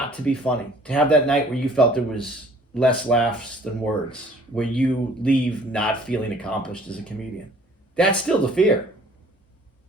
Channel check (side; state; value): both; normal; correlation 0.54